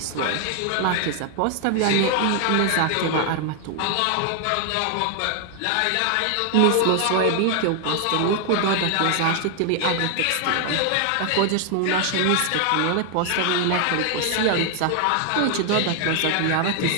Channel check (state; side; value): different; both; correlation 0.00